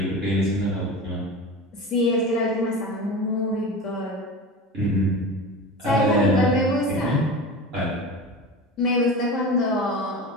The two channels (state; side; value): normal; both; correlation 0.30